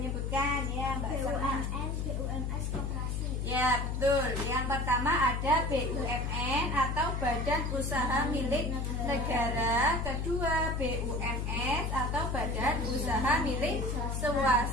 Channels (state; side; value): noise; left; hum, 1 dB below the sound